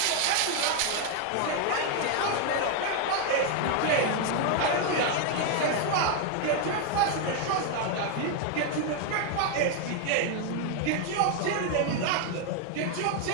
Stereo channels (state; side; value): different; both; correlation 0.01